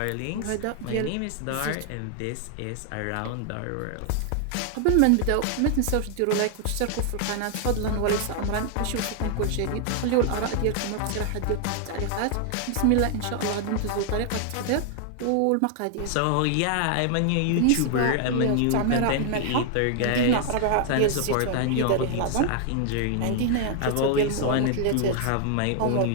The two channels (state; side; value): different; both; correlation 0.00